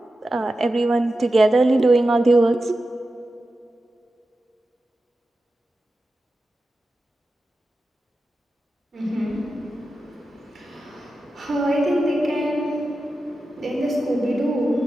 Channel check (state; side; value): normal; both; correlation 0.92